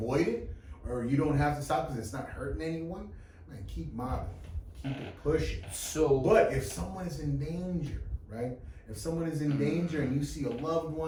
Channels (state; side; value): identical; both; correlation 1.00